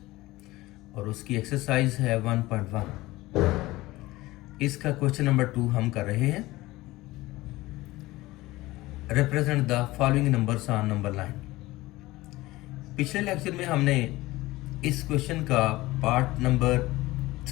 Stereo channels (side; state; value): right; quieter; 18.9 dB